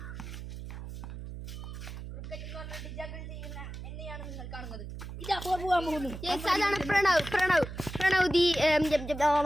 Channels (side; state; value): right; noise; hum, 9 dB below the sound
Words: എന്നെയാണ് നിങ്ങൾ കാണുന്നത്. ഇതാ പോകാൻ പോകുന്നു. അതാണ് പ്രണവ്